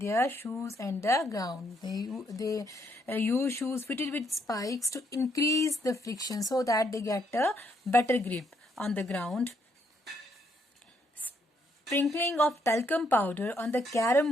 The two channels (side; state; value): both; normal; correlation 0.73